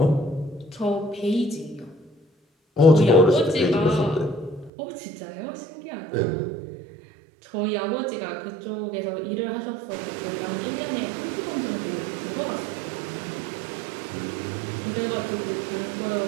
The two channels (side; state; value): left; drops out; at 4.7 s